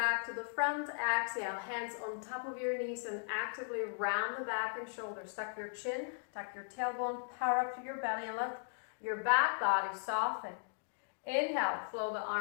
to the front. Exhale, hands on top of your knees and actively round the back and shoulders. Tuck your chin, tuck your tailbone, power up to your belly and let your back body soften. Inhale, flow the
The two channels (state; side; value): silent; right; digital silence